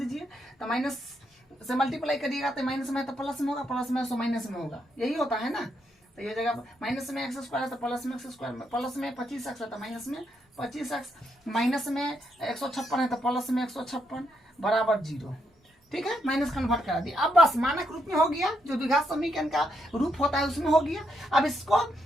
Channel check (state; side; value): normal; both; correlation 0.78